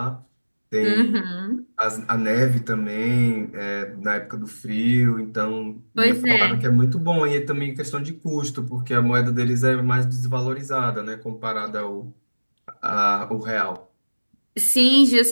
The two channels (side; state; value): both; inverted; correlation -1.00